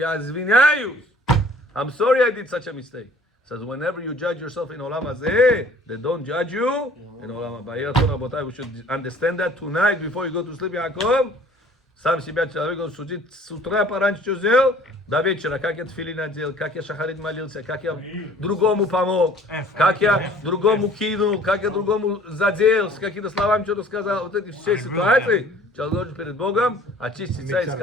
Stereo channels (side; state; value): both; normal; correlation 0.53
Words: sorry I did such a mistake. Says whenever you judge yourself in Olam Hazeh, they don't judge you in Olam Haba. We should understand that tonight before you go to sleep, Yaakov. Сам себя человек судит с утра пораньше сделал, до вечера, как я тфилин одел, как я шахарит молился, как я другому помог, как я другому кинул, как я другому задел, с какими-то словами что-то сказал. Вот эти все ситуации, человек должен перед Богом очиститься и